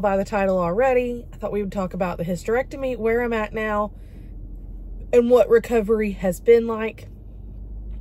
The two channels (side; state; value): both; identical; correlation 1.00